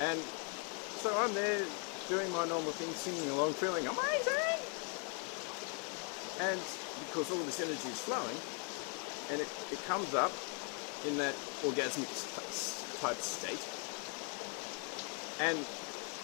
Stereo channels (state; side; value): quieter; right; 38.6 dB